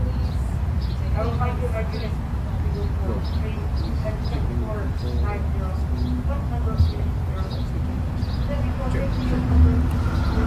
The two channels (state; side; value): identical; both; correlation 1.00